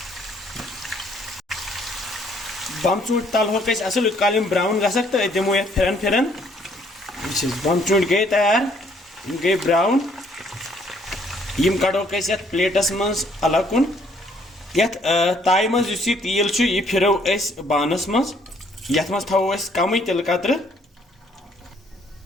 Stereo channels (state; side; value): normal; both; correlation 0.65